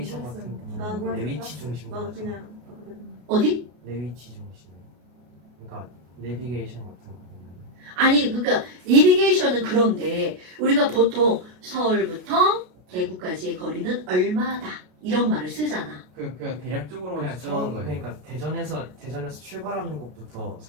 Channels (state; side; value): late; left; 33 ms